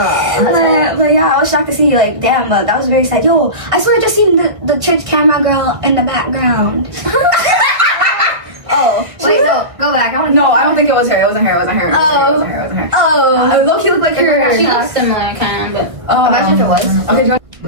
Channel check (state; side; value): late; left; 1.6 ms